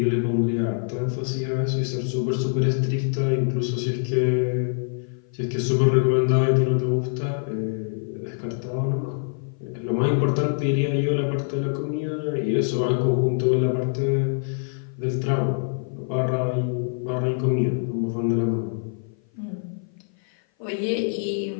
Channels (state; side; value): silent; right; 56 dB below the other